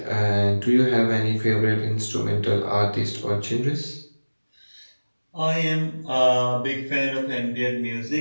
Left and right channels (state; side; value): inverted; both; correlation -1.00